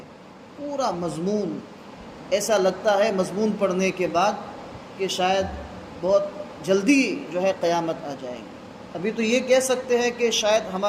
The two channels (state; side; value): identical; both; correlation 1.00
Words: پورا مضمون ایسا لگتا ہے مضمون پڑھنے کے بعد کہ شاید بہت جلدی جو ہے قیامت آ جائے گی۔ ابھی تو یہ کہہ سکتے ہیں کہ شاید